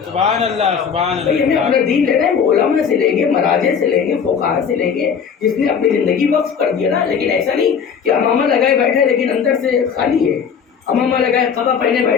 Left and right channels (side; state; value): right; quieter; 6.9 dB